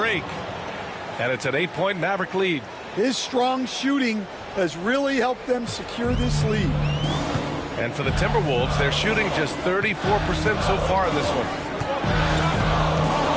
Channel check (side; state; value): both; identical; correlation 1.00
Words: And it's an 8-point Maverick lead. His strong shooting has really helped them secure this lead. And for the Timberwolves, they're shooting just 34% so far in this one.